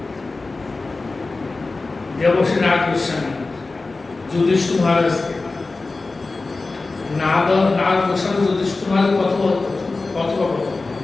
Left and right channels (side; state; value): right; quieter; 3.6 dB